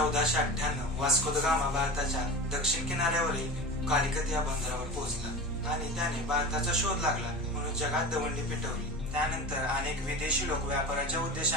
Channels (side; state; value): both; normal; correlation 0.31